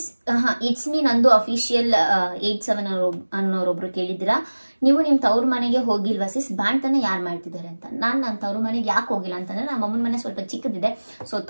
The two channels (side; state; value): both; inverted; correlation -1.00